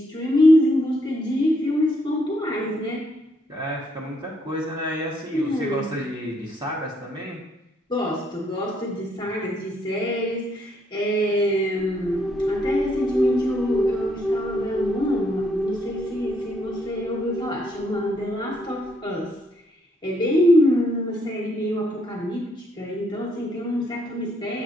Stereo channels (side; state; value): both; normal; correlation 0.73